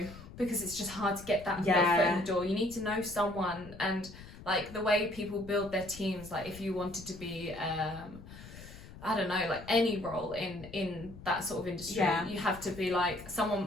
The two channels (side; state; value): left; noise; rumble, 16 dB below the sound